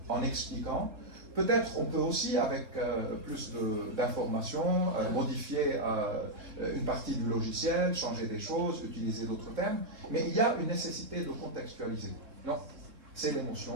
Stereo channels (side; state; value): left; late; 3.7 ms